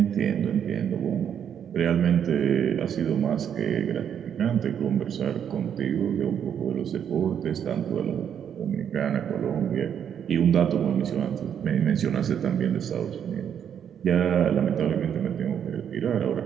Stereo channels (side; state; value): left; quieter; 8.6 dB